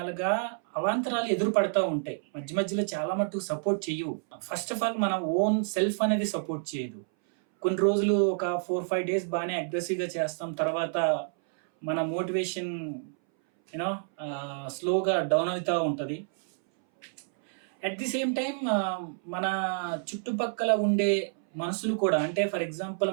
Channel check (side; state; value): left; silent; 59 dB below the other